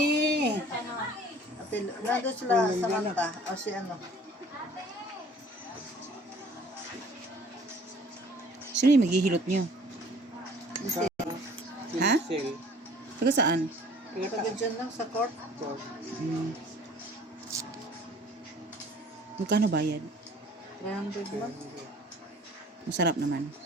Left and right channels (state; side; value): normal; both; correlation 0.52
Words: Ate, nandun sila sa Manta. O si ano. Sino yung maghihilot nyo? Si Ha? Sel. Taga saan? taga dyan lang sa court. Hmm. Magkano bayad? 300 lang. Masarap naman.